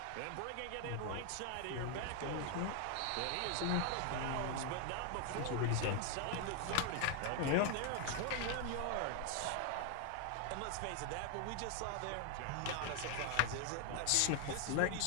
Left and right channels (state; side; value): different; both; correlation 0.00